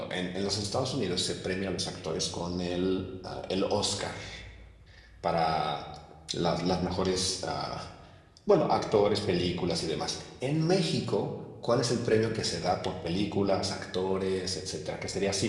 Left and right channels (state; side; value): identical; both; correlation 1.00